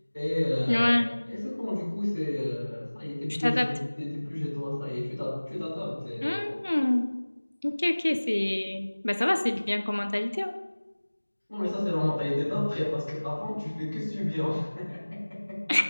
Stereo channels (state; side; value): inverted; both; correlation -1.00